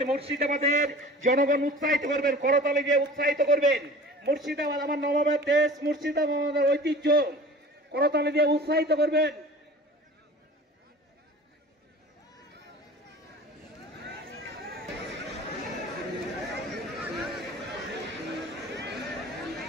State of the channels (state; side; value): normal; both; correlation 0.41